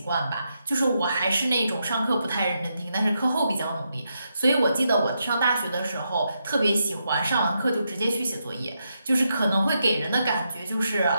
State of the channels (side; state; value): both; inverted; correlation -0.83